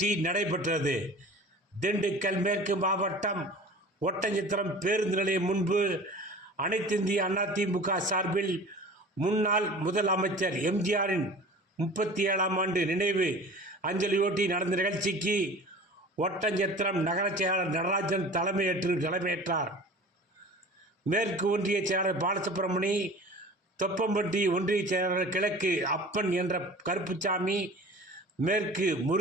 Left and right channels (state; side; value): normal; both; correlation 0.41